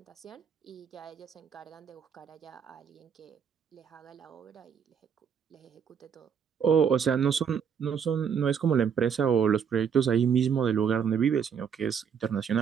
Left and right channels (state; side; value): quieter; left; 7.3 dB